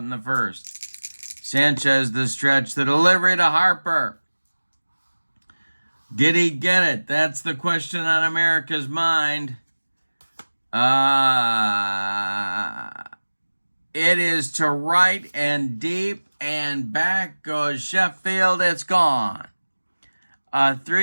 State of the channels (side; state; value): both; inverted; correlation -1.00